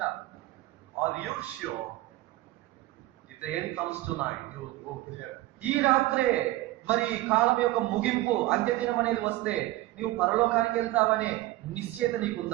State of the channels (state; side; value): quieter; left; 17.7 dB